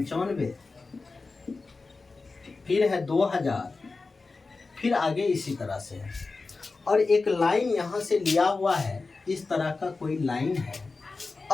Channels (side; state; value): right; quieter; 3.9 dB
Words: फिर है 2000, फिर आगे इसी तरह से है। और एक लाइन यहाँ से लिया हुआ है, इस तरह का कोई लाइन है